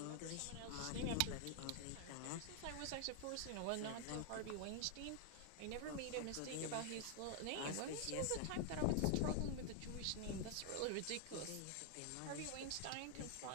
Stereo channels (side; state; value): both; different; correlation 0.00